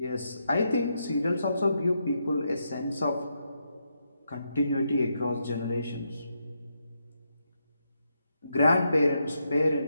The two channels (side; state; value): both; inverted; correlation -0.82